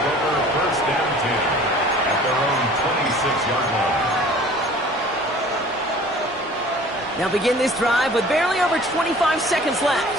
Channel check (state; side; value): normal; both; correlation 0.48